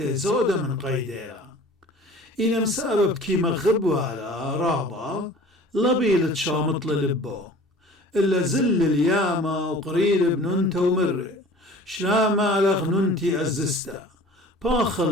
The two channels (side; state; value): both; normal; correlation 0.45